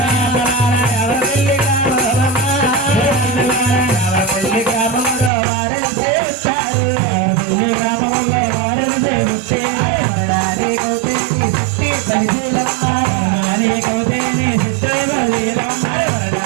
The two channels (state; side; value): drops out; left; at 5.3 s